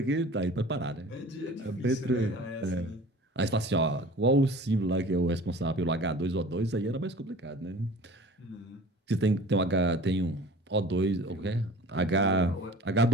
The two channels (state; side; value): normal; both; correlation 0.43